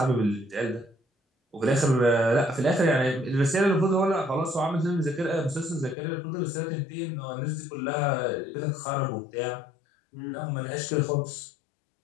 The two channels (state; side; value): drops out; right; at 6.0 s